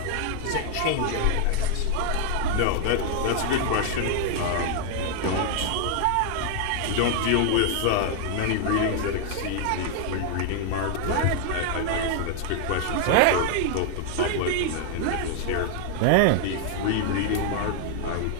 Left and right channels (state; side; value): different; both; correlation 0.00